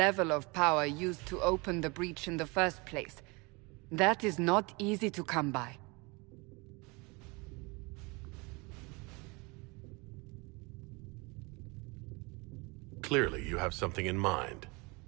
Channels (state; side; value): quieter; left; 27.3 dB